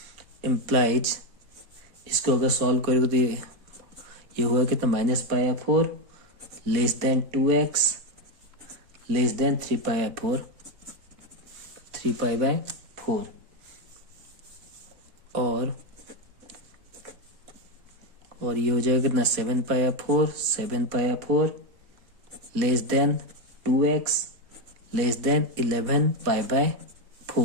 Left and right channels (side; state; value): left; late; 4.2 ms